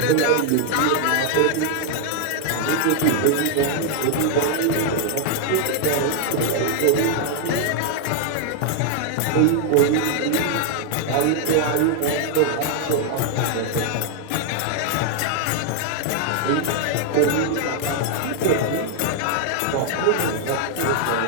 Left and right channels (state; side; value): different; both; correlation 0.00